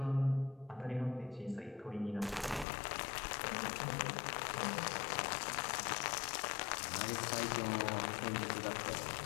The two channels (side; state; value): right; drops out; at 2.7 s